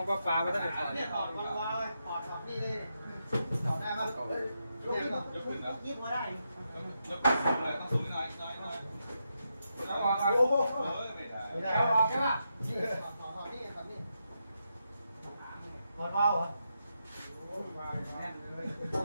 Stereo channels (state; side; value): inverted; both; correlation -0.84